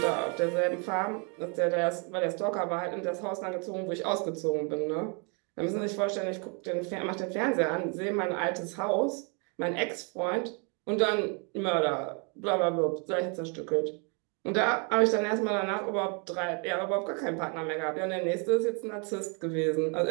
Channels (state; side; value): quieter; left; 35.8 dB